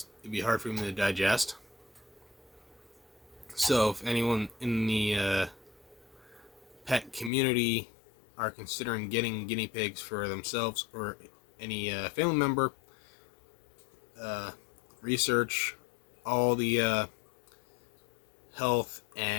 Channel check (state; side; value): drops out; right; at 7.3 s